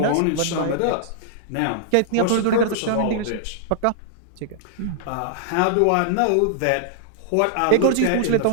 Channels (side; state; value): both; different; correlation -0.01